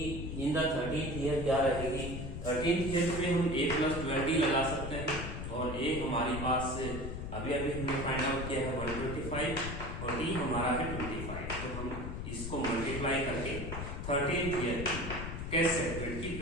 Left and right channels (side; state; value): left; noise; rumble, 5 dB below the sound